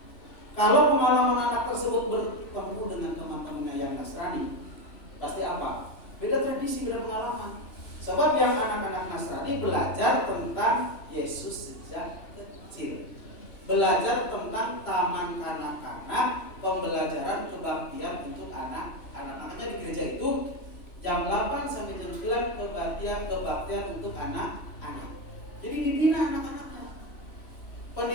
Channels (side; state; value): right; late; 3.0 ms